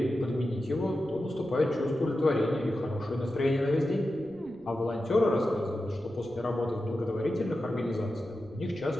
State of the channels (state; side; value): noise; right; rumble, 26 dB below the sound